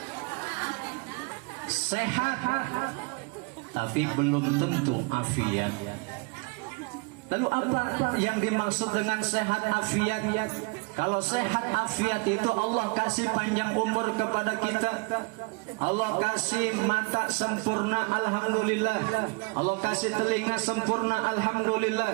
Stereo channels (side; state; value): left; quieter; 30.2 dB